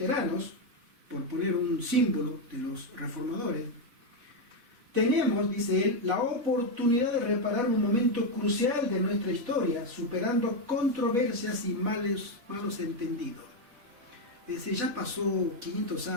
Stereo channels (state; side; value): late; left; 4.0 ms